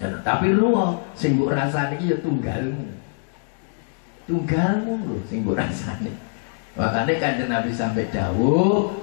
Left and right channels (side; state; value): right; silent; digital silence